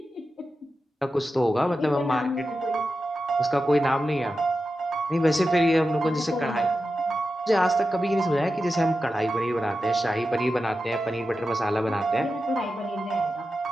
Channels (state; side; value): normal; both; correlation 0.91